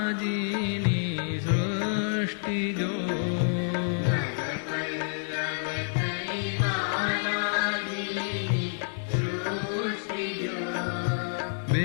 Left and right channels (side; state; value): right; silent; digital silence